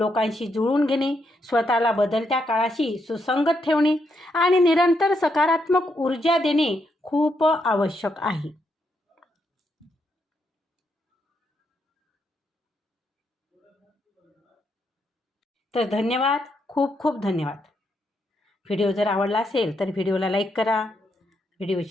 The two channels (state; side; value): normal; both; correlation 0.79